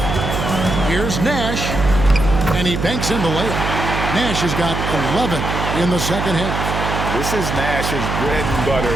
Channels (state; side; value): noise; right; hum, 3 dB below the sound